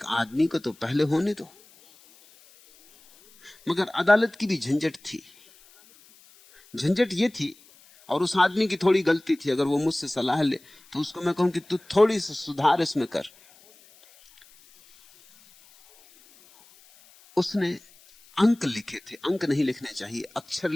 आदमी को तो पहले होने दो। मगर अदालत की भी झंझट थी। झंझट ये थी, और उस आदमी की थोड़ी गलती थी। अगर वो मुझसे सलाह ले तो उसको मैं कहूं कि तू थोड़ी सी सुधार इसमें कर। उसने अंक लिखे थे, अंक नहीं लिखने चाहिए, अक्षर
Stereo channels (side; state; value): left; noise; hiss, 27 dB below the sound